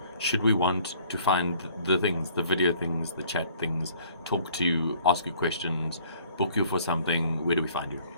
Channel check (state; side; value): inverted; both; correlation -0.56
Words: Should we want to find the things, the video things, the chat things, talk to you, ask you questions, book you for something, where do we find you?